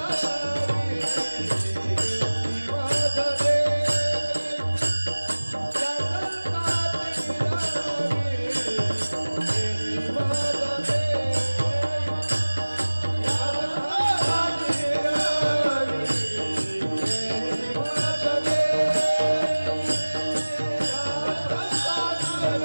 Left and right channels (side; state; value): both; inverted; correlation -1.00